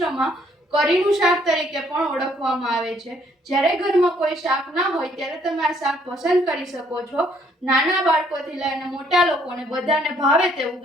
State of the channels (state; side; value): normal; both; correlation 0.66